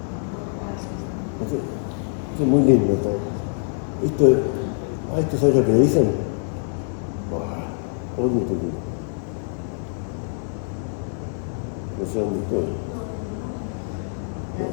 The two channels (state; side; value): silent; right; 62 dB below the other